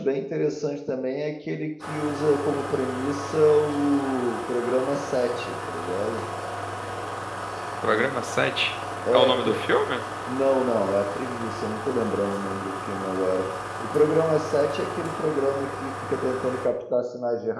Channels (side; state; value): both; identical; correlation 1.00